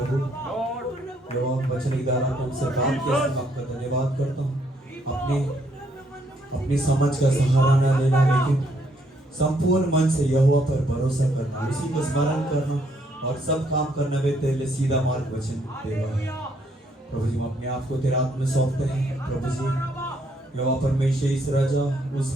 जो आप वचन के द्वारा हमसे बात किया, आपका धन्यवाद करता हूँ। अपनी समझ का सहारा न लेना, लेकिन संपूर्ण मन से यहोवा पर भरोसा करना, उसी को स्मरण करना और सब काम करने में तेरे लिए सीधा मार्ग वचन देगा। प्रभु जी, हम अपने आप को तेरे हाथ में सौंपते हैं। प्रभु जी, यहोवा परमेश्वर इस राजा उस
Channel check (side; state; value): both; normal; correlation 0.71